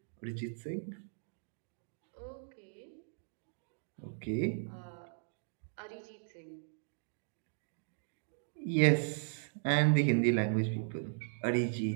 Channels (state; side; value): silent; left; digital silence